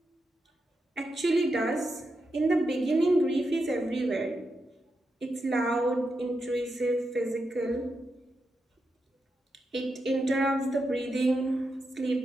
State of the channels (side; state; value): both; normal; correlation 0.86